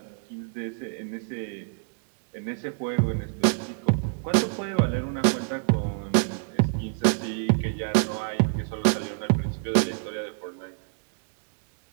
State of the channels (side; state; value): left; silent; digital silence